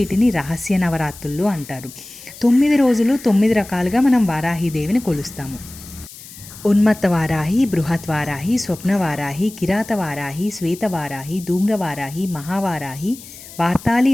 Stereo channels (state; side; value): noise; left; hiss, 17 dB below the sound